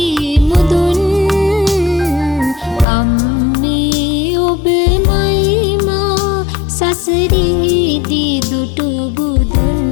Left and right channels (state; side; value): drops out; right; at 2.9 s